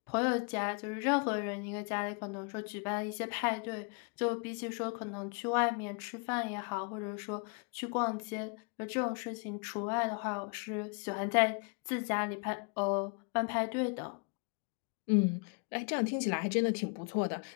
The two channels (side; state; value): right; quieter; 34.7 dB